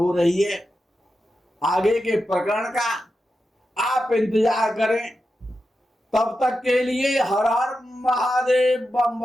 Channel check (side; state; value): both; normal; correlation 0.90